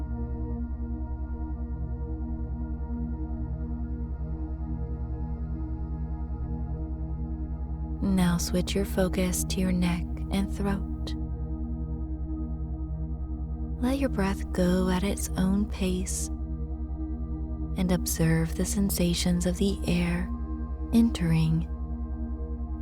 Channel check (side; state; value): both; identical; correlation 1.00